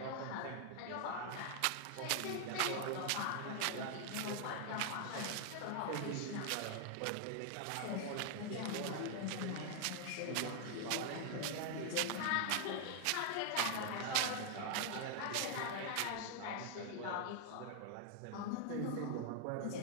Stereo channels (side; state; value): both; different; correlation 0.00